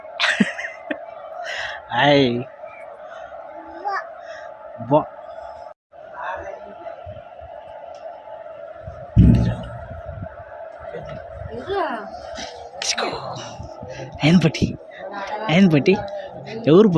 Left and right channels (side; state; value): both; identical; correlation 1.00